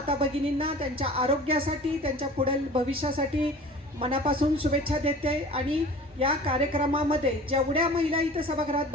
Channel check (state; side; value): normal; both; correlation 0.42